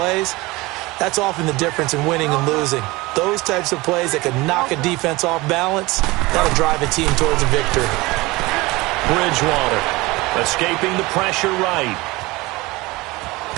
that's often the difference in winning and losing. Those types of plays that can knock a defense off balance, that'll drive a team towards a victory. Bridgewater escaping the pressure right.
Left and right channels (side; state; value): left; quieter; 21.8 dB